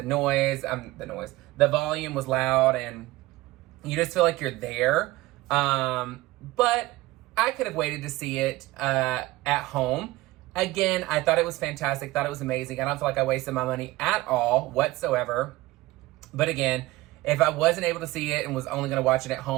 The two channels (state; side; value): quieter; left; 18.7 dB